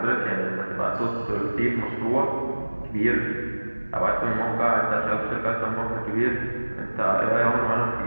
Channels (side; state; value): both; inverted; correlation -1.00